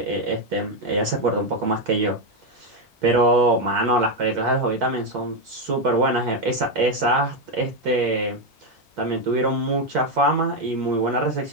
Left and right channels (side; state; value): both; normal; correlation 0.06